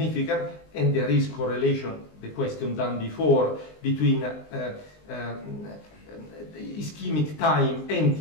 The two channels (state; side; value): late; right; 20 ms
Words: and there is correlation, the question done before, between ischemic time and